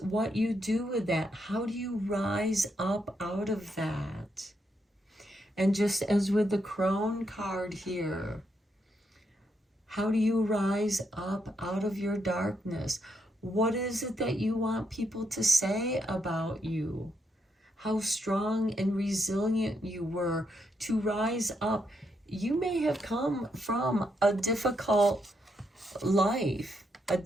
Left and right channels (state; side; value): normal; both; correlation 0.79